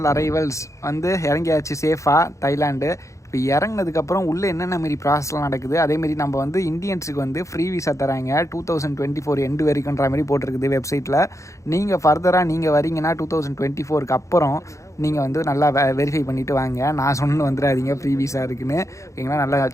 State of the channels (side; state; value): right; late; 0.15 ms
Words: அரைவல்ஸ் வந்து இறங்கியாச்சு சேஃபாக தைலாண்டு. இப்போ இறங்கினதுக்கப்புறம் உள்ளே என்னென்ன மாரி ப்ராசஸ்லாம் நடக்குது, அதேமாரி நம்ம வந்து இந்தியன்ஸுக்கு வந்து ஃப்ரீ விசா தராங்க 2024 எண்டு வரைக்குன்ற மாதிரி போட்டிருக்குது வெப்சைட்டில். நீங்கள் ஃபர்தராக நீங்கள் வரீங்கன்னா 2024க்கு அப்புறம் நீங்கள் வந்து நல்லா வெரிஃபை பண்ணிவிட்டு வாங்க. நான் சொன்னு வந்துடாதீங்க ஃப்ரீ விசா இருக்குன்னு, ஓகேங்களா. நல்லா